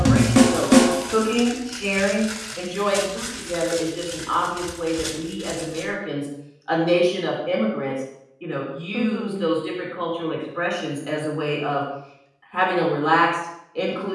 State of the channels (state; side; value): identical; both; correlation 1.00